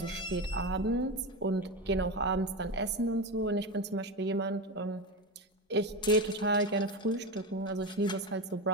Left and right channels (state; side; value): normal; both; correlation 0.18